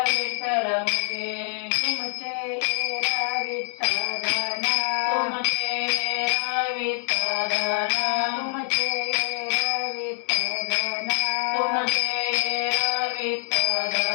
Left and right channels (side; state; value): right; silent; 62 dB below the other